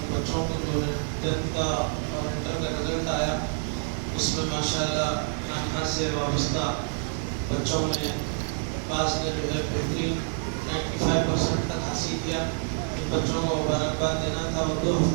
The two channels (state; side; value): silent; left; digital silence